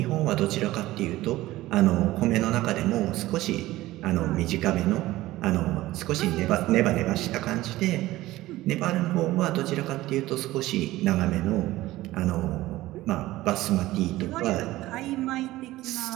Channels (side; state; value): left; quieter; 17.0 dB